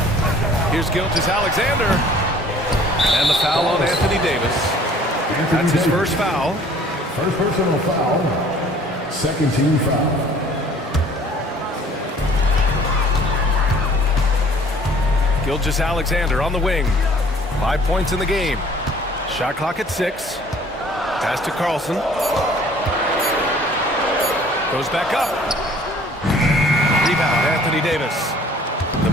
Here's Gilgeous-Alexander. And the foul on Anthony Davis. That's his first foul. First personal foul. Second team foul. Gilgeous-Alexander on the wing. 5 points in the game. Shot clock at 6. Pass to Carlson. Goes back up. Rebound, Anthony Davis. The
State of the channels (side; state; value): both; normal; correlation 0.53